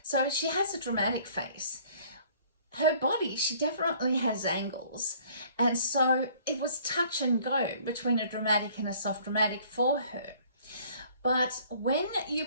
So she has a dramatic face. Her body, she definitely has angles, and so it was touch and go between a dramatic and a soft dramatic for her. But when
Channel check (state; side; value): inverted; both; correlation -0.56